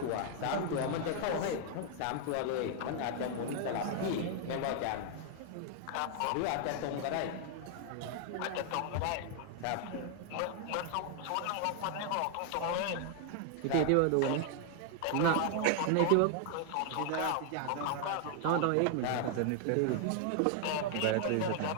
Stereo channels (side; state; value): both; different; correlation 0.00